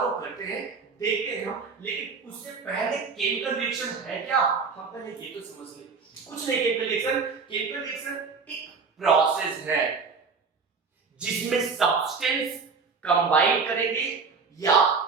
करते हैं, देखते हैं हम। लेकिन उससे पहले केमिकल रिएक्शन है क्या, हम पहले ये तो समझ लें। कुछ नहीं, केमिकल रिएक्शन एक प्रोसेस है जिसमें सब्सटेंस कंबाइन करेंगे या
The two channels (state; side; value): quieter; left; 5.0 dB